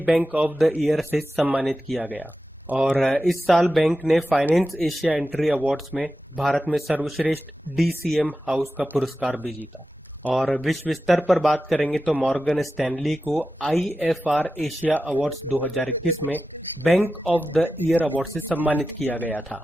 बैंक ऑफ द ईयर से सम्मानित किया गया। और इस साल बैंक ने फाइनेंस एशिया एंट्री अवार्ड्स में भारत में सर्वश्रेष्ठ DCM हाउस का पुरस्कार भी जीता। और विश्व स्तर पर बात करेंगे तो मॉर्गन स्टैनली को IFR एशिया अवार्ड्स 2021 में bank of the year award से सम्मानित किया गया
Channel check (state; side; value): normal; both; correlation 0.92